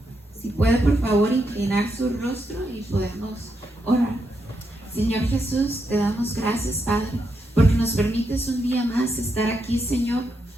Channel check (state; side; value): normal; both; correlation 0.82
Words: Si puede, por favor, inclinar su rostro y podemos orar. Señor Jesús, te damos gracias, Padre, porque nos permites un día más estar aquí, Señor,